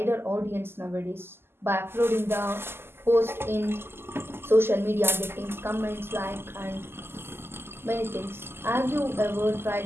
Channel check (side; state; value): left; late; 0.12 ms